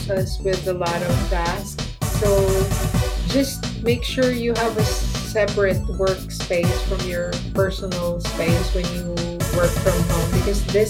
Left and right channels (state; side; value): identical; both; correlation 1.00